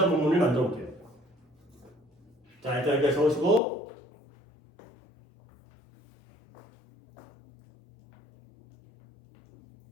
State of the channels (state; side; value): drops out; right; at 3.6 s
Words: 의문문을 만들어 볼게요. 자, 일단 여기까지 적으시고